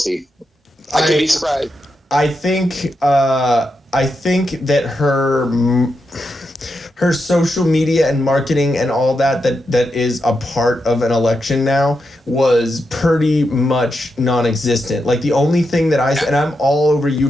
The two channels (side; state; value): both; normal; correlation 0.85